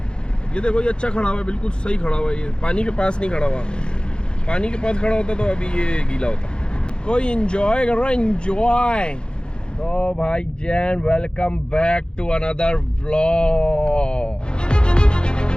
ये देखो, ये अच्छा खड़ा हुआ है, बिल्कुल सही खड़ा हुआ है। ये पानी के पास नहीं खड़ा हुआ, पानी के पास खड़ा होता तो अभी ये गीला होता। कोई एंजॉय कर रहा है, एंजॉय। तो भाई जैन, welcome back to another vlog.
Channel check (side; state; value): right; late; 0.050 ms